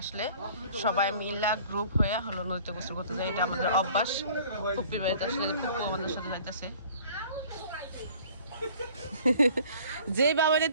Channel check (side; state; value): both; inverted; correlation -0.51